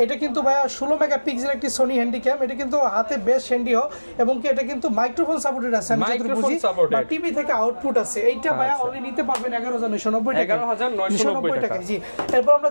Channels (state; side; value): inverted; both; correlation -1.00